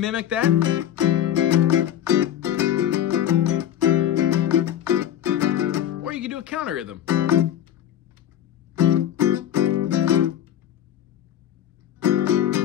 that. Or you can do a counter rhythm.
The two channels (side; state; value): right; quieter; 10.9 dB